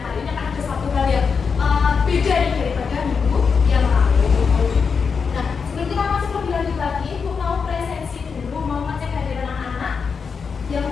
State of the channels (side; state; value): right; quieter; 5.7 dB